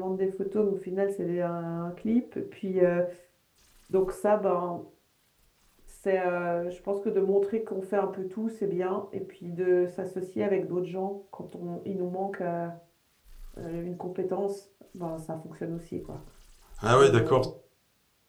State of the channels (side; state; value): both; identical; correlation 1.00